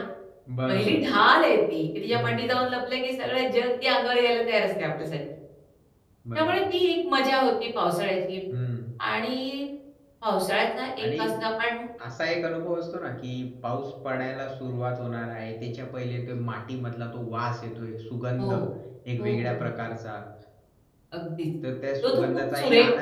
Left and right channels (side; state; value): both; identical; correlation 1.00